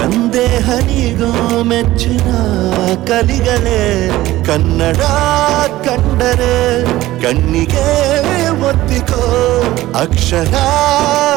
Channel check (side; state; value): left; quieter; 16.3 dB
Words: ನೀಗೋ ಮೆಚ್ಚಿನ ಕಲಿಗಳೇ ಕನ್ನಡ ಕಂಡರೆ ಕಣ್ಣಿಗೆ ಒತ್ತಿಕೋ ಅಕ್ಷರ